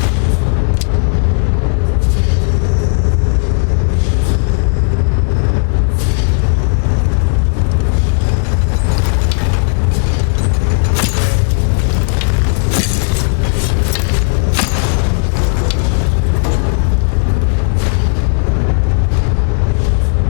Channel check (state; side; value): silent; right; digital silence